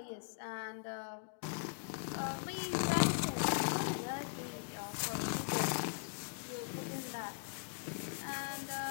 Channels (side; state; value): right; silent; digital silence